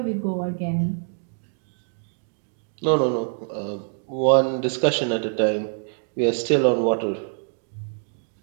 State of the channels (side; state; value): left; silent; digital silence